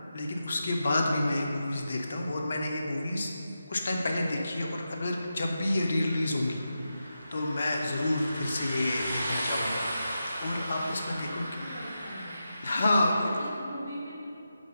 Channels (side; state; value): both; inverted; correlation -0.89